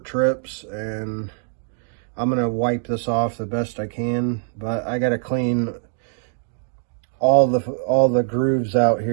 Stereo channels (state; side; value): silent; left; 62 dB below the other